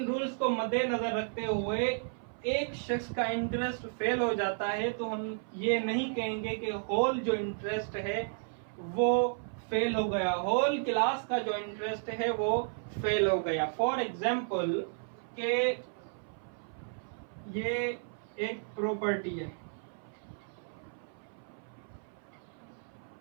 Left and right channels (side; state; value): left; silent; 56 dB below the other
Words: रूल्स को मद्देनजर रखते हुए एक शख्स का इंटरेस्ट फेल हो जाता है तो हम ये नहीं कहेंगे कि होल जो इंटरेस्ट है वो फेल हो गया, होल क्लास का जो इंटरेस्ट है वो फेल हो गया। फॉर एग्जाम्पल के ये एक प्रॉपर्टी है,